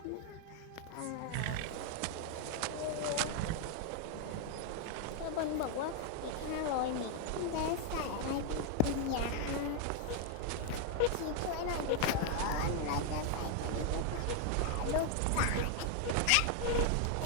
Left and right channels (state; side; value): different; both; correlation 0.00